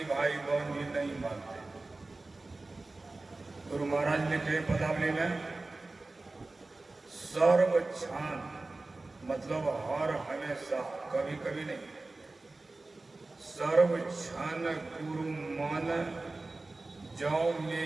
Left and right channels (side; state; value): left; quieter; 3.2 dB